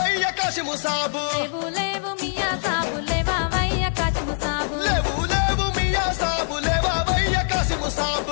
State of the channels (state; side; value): silent; right; digital silence